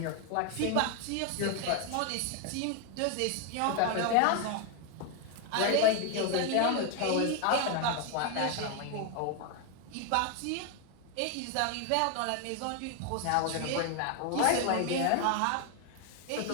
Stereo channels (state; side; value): different; both; correlation 0.01